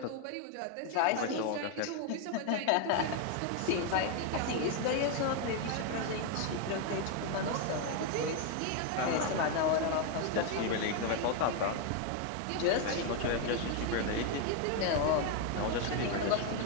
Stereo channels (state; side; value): different; both; correlation 0.01